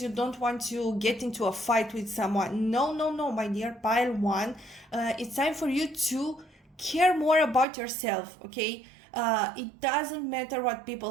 you don't want to get into a fight with someone. No, my dear pile 1, it's time for you to care more about yourself, okay? It doesn't matter what people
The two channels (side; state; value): left; drops out; at 7.7 s